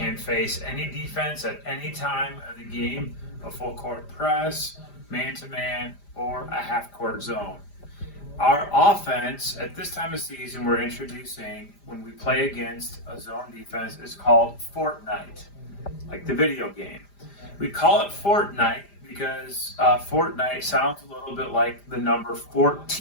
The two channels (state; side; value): late; right; 5.0 ms